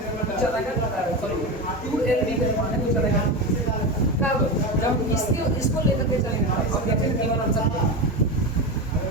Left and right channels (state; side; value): normal; both; correlation 0.20